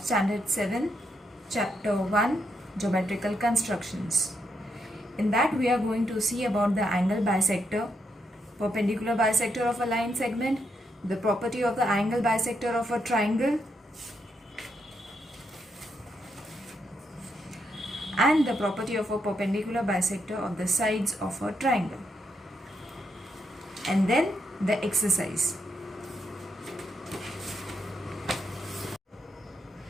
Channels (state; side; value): normal; both; correlation 0.80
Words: standard 7, chapter 1, geometrical constructions. In that we are going to see about the angle bisector, perpendicular bisector of a line segment, the property of the angle bisector of a triangle, and the property of a perpendicular bisector of the sides of a triangle. And then the exercise.